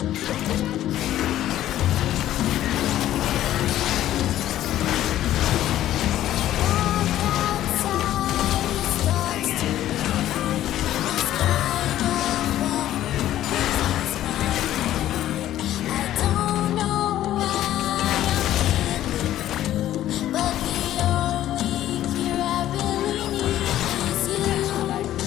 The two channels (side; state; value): right; quieter; 13.0 dB